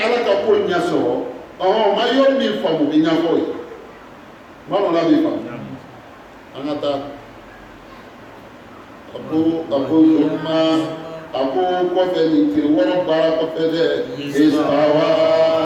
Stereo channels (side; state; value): both; identical; correlation 1.00